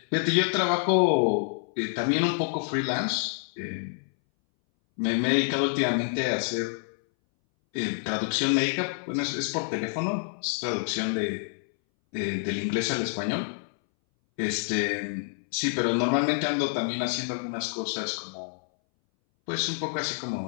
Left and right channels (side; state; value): right; silent; 60 dB below the other